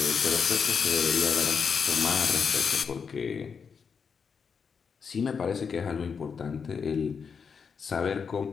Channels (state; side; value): quieter; right; 6.1 dB